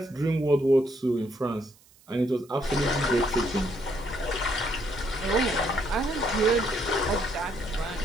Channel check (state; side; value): noise; right; hiss, 28 dB below the sound